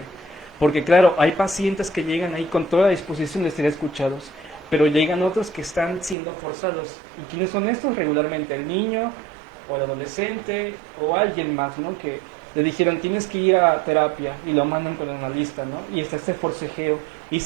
Porque claro, hay pacientes que llegan ahí con toda la disposición de ser escuchados, pero llegan otros que están siendo forzados. ¿Y quiénes son estos? Regularmente el niño o el adolescente o alguien más, ¿no? Que le dijeron tienes que ir a terapia y lo mandan con el analista, ¿no? Y está este forcejeo y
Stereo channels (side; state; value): left; drops out; at 6.2 s